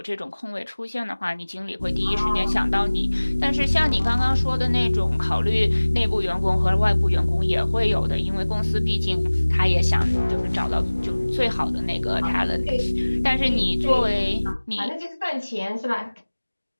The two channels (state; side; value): inverted; both; correlation -1.00